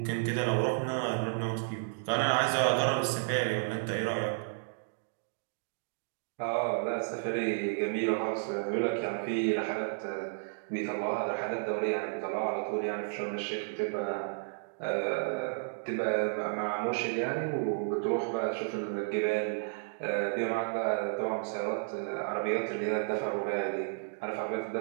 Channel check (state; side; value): silent; left; digital silence